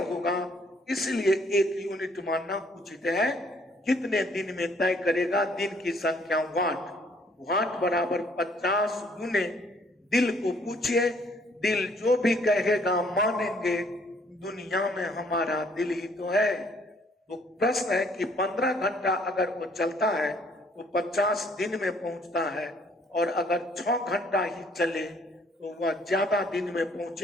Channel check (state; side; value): normal; both; correlation 0.63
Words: होगा, इसलिए 1 यूनिट मानना उचित है। कितने दिन में तय करेगा? दिन की संख्या वाट बराबर 50 गुने दिल को पूछिए, दिल जो भी कहेगा मानेंगे, दुनिया में हमारा दिल ही तो है। तो प्रश्न है कि 15 घंटा अगर वो चलता है तो 50 दिन में पहुंचता है, और अगर 6 घंटा ही चले तो वह ज्यादा दिन में